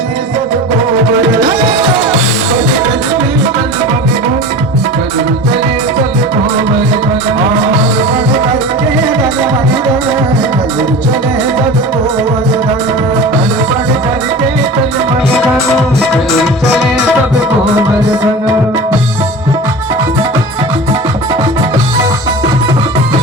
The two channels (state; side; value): normal; both; correlation 0.34